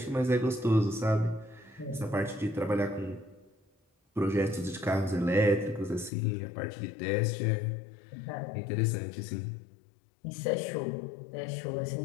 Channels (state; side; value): drops out; right; at 6.1 s